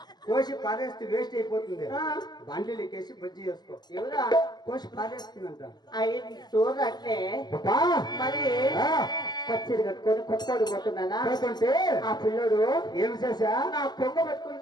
కోసి పారేస్తే వేస్ట్ అయిపోతుంది. బండ్లు ఎక్కేసి బజ్జి వేసుకో. ఎవరా కోసి పారేస్తుందంట. అయ్యి చూడట్లే మరి పచ్చిరి కట్టుకొని కొట్టుకోడు పోతున్నానా? ఆ పిల్లడు ఏమి చేసా నా కొంగ పట్టుకుని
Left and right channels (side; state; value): right; late; 0.20 ms